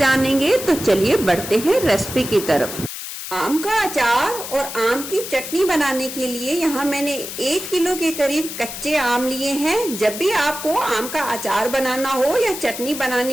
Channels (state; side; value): noise; left; hiss, 8 dB below the sound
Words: तो चलिए बढ़ते हैं रेसिपी की तरफ। आम का अचार और आम की चटनी बनाने के लिए यहाँ मैंने 1 किलो के करीब कच्चे आम लिए हैं। जब भी आपको आम का अचार बनाना हो या चटनी